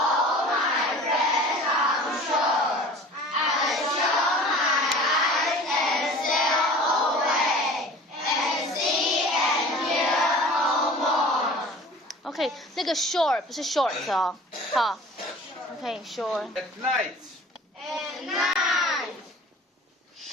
！OK， 那个 shore 不是 short 哦，好 ，OK shore。 At night.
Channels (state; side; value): normal; both; correlation 0.43